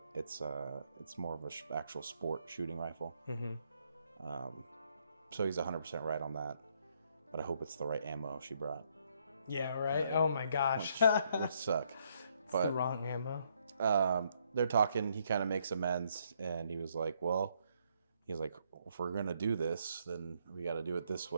it's more of a actual sport shooting rifle. Mm-hmm. So he's 100% right on that. But I hope it's the right ammo she brought. Yeah, right? Oh my gosh. Which suck. It's the wrong ammo. They're talking, he kind of makes amends, and he was like, if we're going to do this, then we got to do it this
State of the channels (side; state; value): both; inverted; correlation -0.72